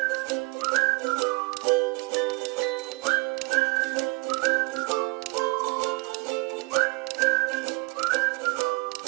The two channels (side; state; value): left; quieter; 28.9 dB